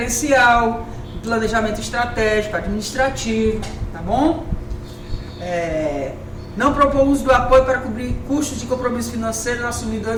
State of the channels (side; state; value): both; identical; correlation 1.00